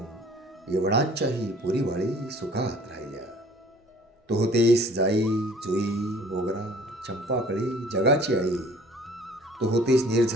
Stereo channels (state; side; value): normal; both; correlation 0.52